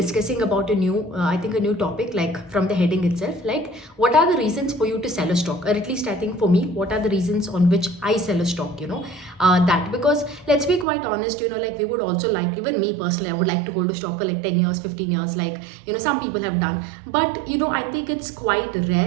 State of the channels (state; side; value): drops out; left; at 10.9 s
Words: about I think a new topic, like from the heading itself, like what are the reasons for you to sell a stock? Or at least I think for me, what are the reasons on which I sell a stock, that because let's be quite honest, like we would also like, even me personally, I would like to hold a stock for like 10 years, 15 years, like some people have done. But I think it's quite